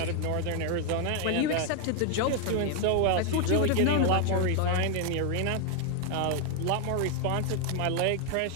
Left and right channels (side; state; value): both; different; correlation 0.00